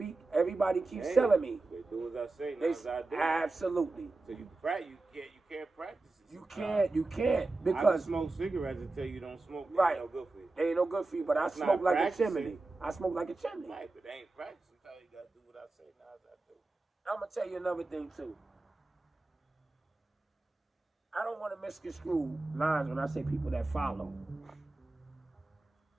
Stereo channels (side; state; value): left; quieter; 3.2 dB